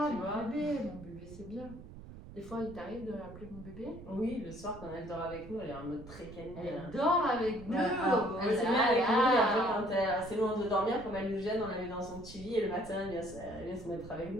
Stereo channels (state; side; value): noise; right; rumble, 15 dB below the sound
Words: tu vois. mon bébé, c'est bien. Des fois, il t'arrive de l'appeler mon bébé? Oui, le soir, quand elle dort avec nous, elle est en mode très câline. Elle dort avec nous! Elle s'est mise avec nous, et après, quand elle est assez loin de dormir, comme elle nous gêne, on la met dans son petit lit, et le matin, elle vient se mettre avec